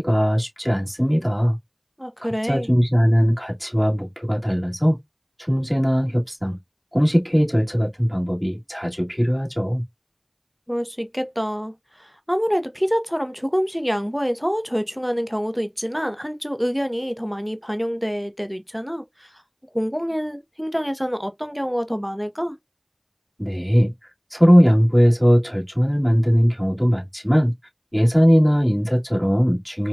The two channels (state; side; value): identical; both; correlation 1.00